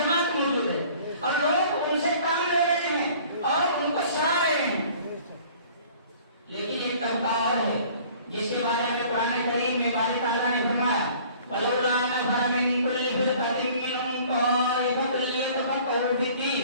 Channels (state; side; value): inverted; both; correlation -0.51